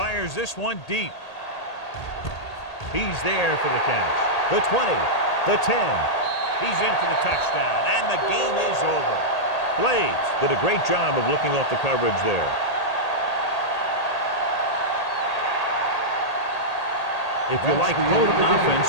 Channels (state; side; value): late; right; 1.8 ms